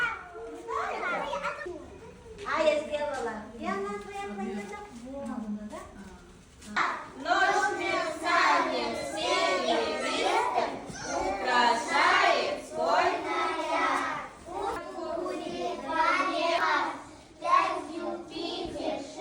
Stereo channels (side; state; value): both; identical; correlation 1.00